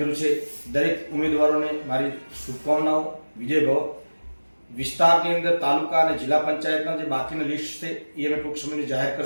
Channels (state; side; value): inverted; both; correlation -1.00